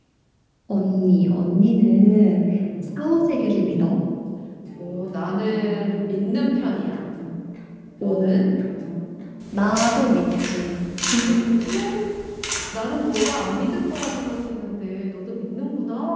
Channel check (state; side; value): identical; both; correlation 1.00